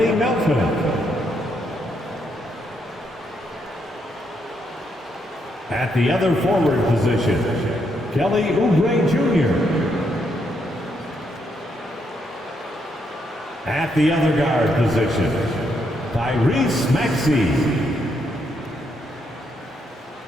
Melton. At the other forward position, Kelly Oubre Jr. At the other guard position, Tyrese Maxey.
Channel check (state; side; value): normal; both; correlation 0.77